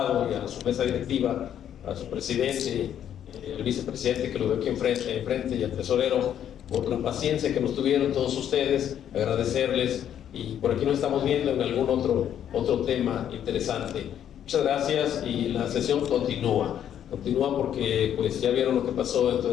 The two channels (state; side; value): quieter; right; 9.9 dB